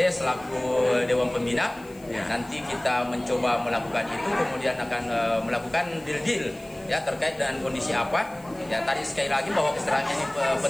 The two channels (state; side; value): noise; left; hiss, 25 dB below the sound